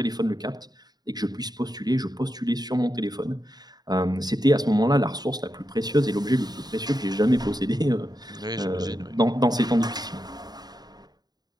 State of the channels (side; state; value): left; late; 0.19 ms